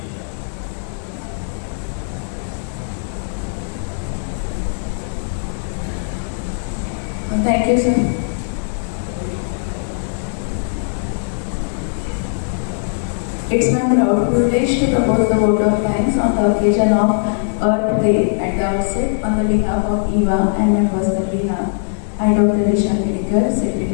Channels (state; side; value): silent; right; 63 dB below the other